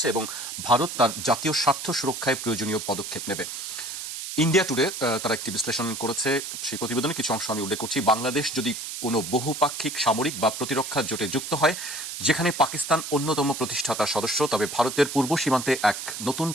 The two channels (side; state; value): right; noise; hiss, 7 dB below the sound